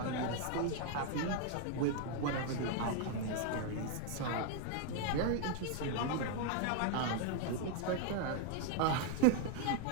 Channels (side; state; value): both; different; correlation 0.00